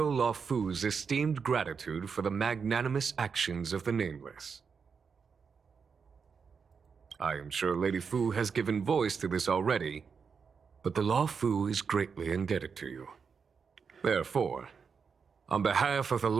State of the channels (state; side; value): quieter; left; 5.9 dB